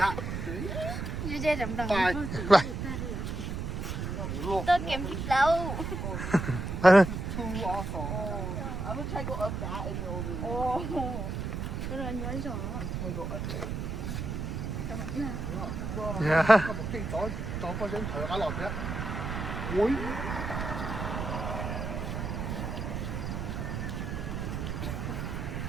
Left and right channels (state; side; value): noise; right; rumble, 4 dB below the sound